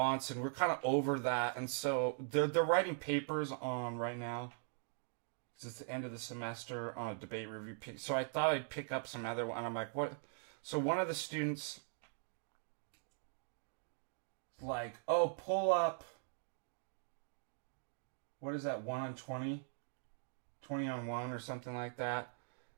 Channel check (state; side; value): silent; left; digital silence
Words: We're kind of over that, and so they're writing papers on right now. It's the end of the semester on a debate review. So I thought I'd pick up some other one. And I'm like, what? So one of the students, like, oh, pull up. What is that? 1 on 20, 20 on 1, or something like that.